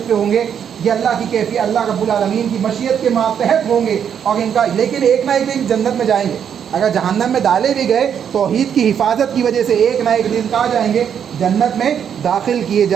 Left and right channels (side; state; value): left; quieter; 8.3 dB